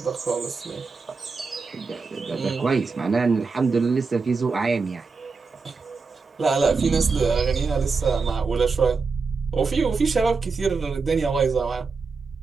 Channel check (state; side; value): quieter; left; 4.6 dB